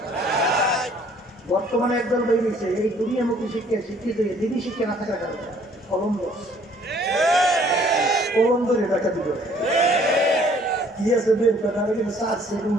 বর্তমানে একদল বেরিয়েছে এই দুনিয়ামুখী শিক্ষা শিক্ষিত হয়ে দিনই শিক্ষা না থাকার কারণে কলম্বরে ডাকাতি করে, কি আছে বের কর, নাহলে কিন্তু সাত সেটা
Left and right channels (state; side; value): normal; both; correlation 0.59